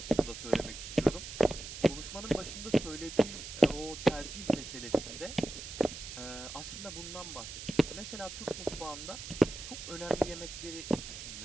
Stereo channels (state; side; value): noise; right; hiss, 10 dB below the sound